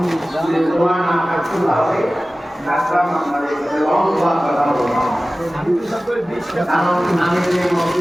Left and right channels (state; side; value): normal; both; correlation 0.96